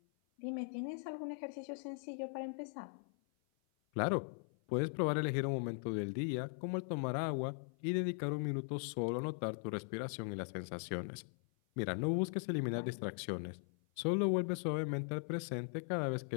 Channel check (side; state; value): right; silent; 51 dB below the other